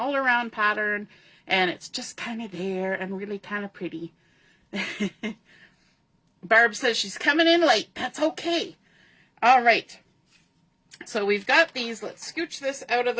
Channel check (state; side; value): identical; both; correlation 1.00